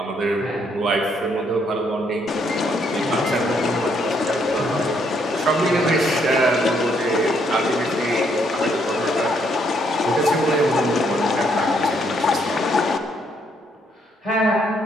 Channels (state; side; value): normal; both; correlation 0.71